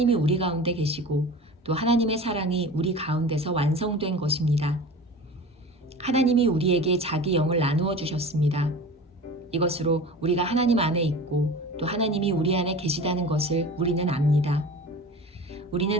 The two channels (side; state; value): both; normal; correlation 0.36